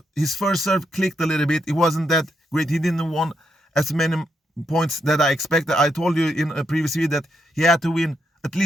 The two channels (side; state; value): both; normal; correlation 0.80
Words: first serve clicked a little bit. It wasn't that great. He didn't win as many points that I expected. I told you in a previous video that he had to win at